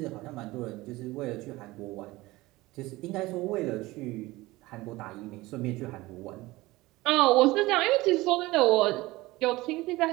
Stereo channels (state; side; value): quieter; left; 19.7 dB